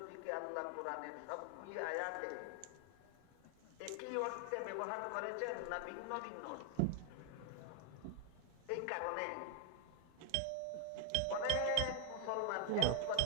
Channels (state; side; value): different; both; correlation 0.00